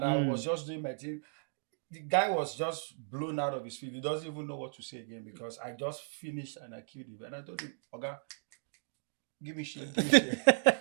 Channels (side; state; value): left; silent; digital silence